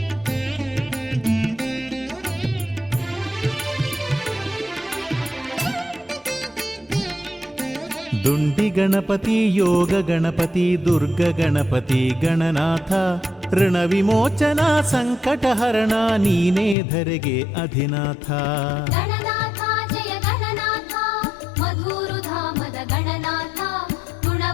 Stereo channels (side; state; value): right; drops out; at 16.8 s